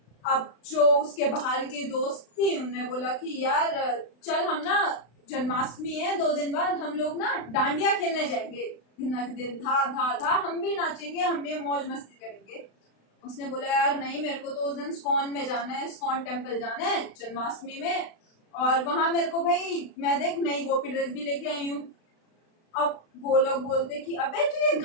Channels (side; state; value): right; late; 35 ms